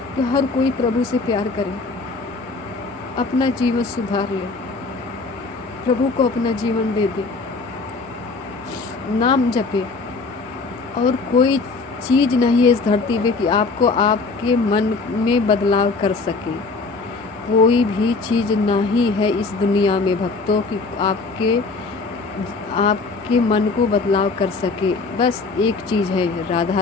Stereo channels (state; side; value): quieter; right; 4.0 dB